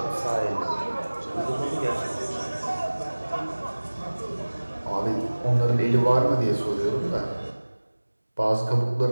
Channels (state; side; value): inverted; both; correlation -1.00